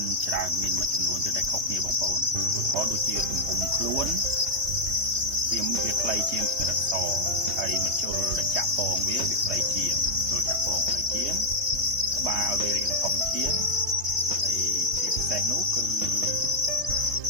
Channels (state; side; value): late; left; 3.2 ms